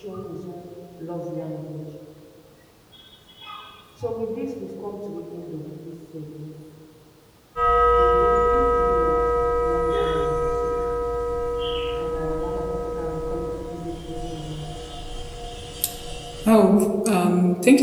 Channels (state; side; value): identical; both; correlation 1.00